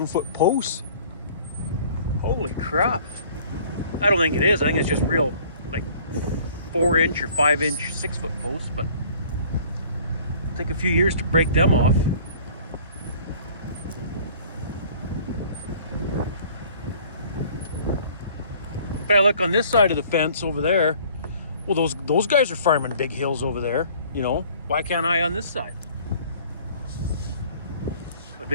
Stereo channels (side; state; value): both; inverted; correlation -0.53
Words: posts. Holy crap. I don't think it is. I think it's just real, like 4-inch or 5-inch 6-foot posts, but it'll take a few years to break them off. But I look on this side of the fence over there. Well, those guys are farming big hills over there, you know. Why can't I on this side? But